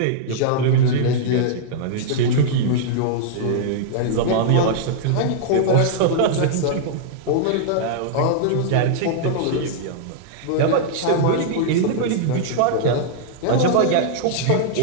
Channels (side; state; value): both; different; correlation -0.01